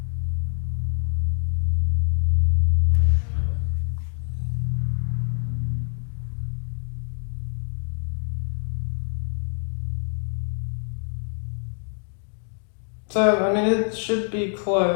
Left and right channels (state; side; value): silent; right; digital silence